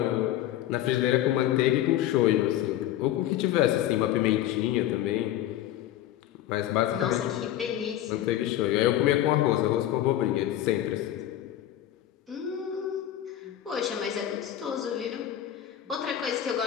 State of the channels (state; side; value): quieter; right; 12.6 dB